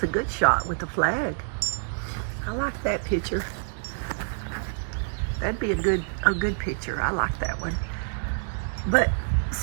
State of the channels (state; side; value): silent; left; digital silence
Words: a good shot with the flag. I like that picture. That'd be a good picture. I like that one. But